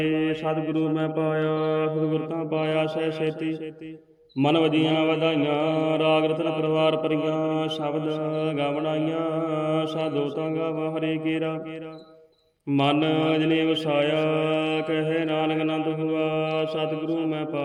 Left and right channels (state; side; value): identical; both; correlation 1.00